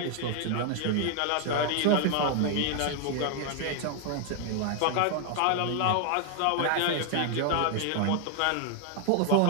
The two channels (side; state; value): both; different; correlation 0.00